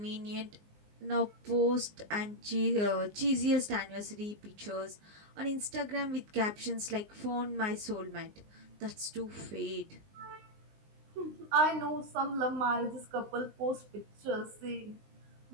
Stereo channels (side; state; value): left; late; 19 ms